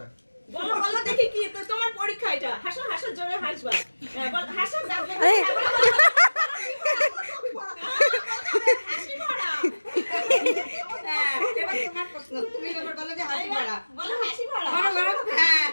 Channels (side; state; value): both; inverted; correlation -1.00